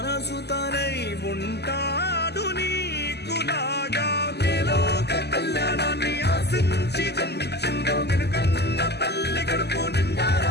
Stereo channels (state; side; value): late; right; 0.49 ms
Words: తనై ఉంటాడు నీకులాగా. ఆశించి జన్మించిందో వెనుకన్న తల్లి కడుపు